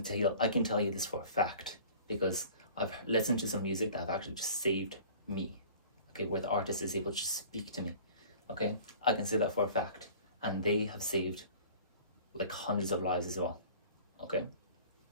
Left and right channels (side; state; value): both; inverted; correlation -0.45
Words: tell you this for a fact because I've listened to some music that have actually just saved me, okay, where the artist is able to just speak to me, okay? I can say that for a fact, and they have saved like hundreds of lives as well, okay?